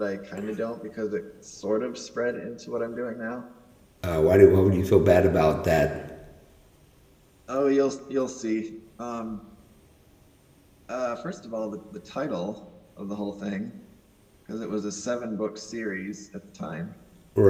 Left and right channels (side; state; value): both; identical; correlation 1.00